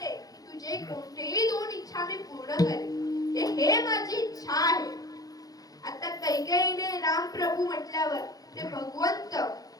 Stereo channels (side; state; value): right; late; 0.18 ms